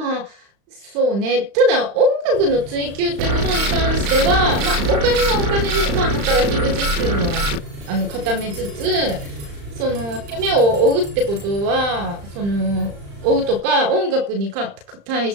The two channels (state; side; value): late; left; 35 ms